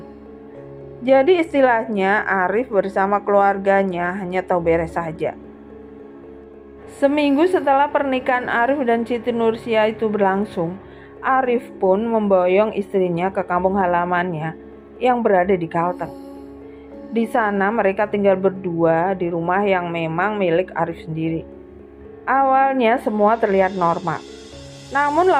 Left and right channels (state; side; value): identical; both; correlation 1.00